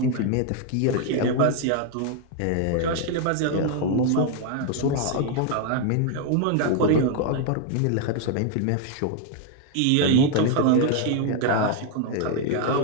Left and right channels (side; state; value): both; different; correlation 0.00